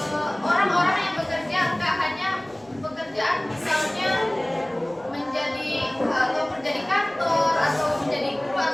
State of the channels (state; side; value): noise; left; hum, 29 dB below the sound